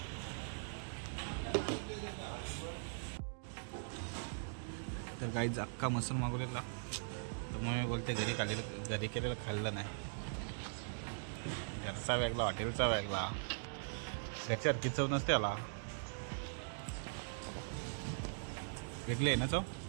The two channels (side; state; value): left; silent; digital silence